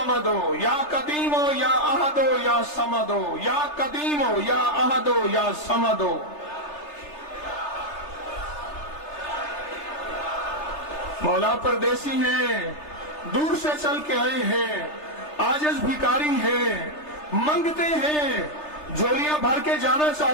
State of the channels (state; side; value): late; right; 3.3 ms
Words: یا قدیمو یا احدو یا سمدو یا قدیمو یا احدو یا سمدو. مولا پردیسی ہیں، دور سے چل کے آئے ہیں، عاجز بھکاری ہیں، منگتے ہیں، جھولیاں بھر کے جانا